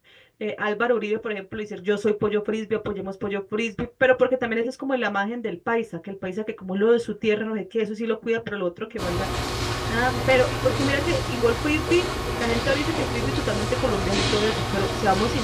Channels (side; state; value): both; identical; correlation 1.00